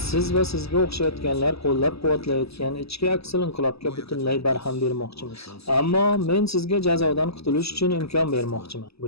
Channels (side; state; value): right; late; 0.78 ms